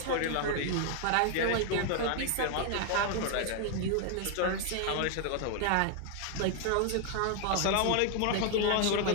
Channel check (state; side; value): different; both; correlation 0.00